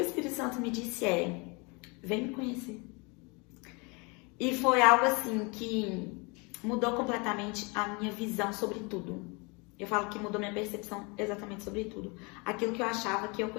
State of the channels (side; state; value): right; quieter; 29.7 dB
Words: Espírito Santo me disse vem me conhecer. E foi algo assim que mudou completamente a minha visão sobre tudo. Eu falo que mudou minha percepção exatamente sobre tudo. Aquilo que eu achava que eu